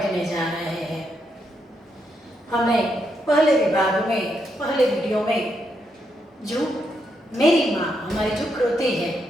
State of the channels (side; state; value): both; normal; correlation 0.80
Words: जा रहे हैं। हमने पहले विभाग में पहले वीडियो में जो मेरी माँ हमारी जो कृति है